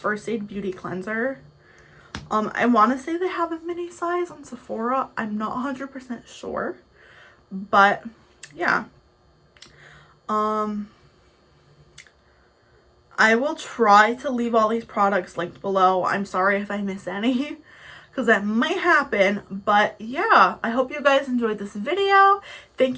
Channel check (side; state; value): both; identical; correlation 1.00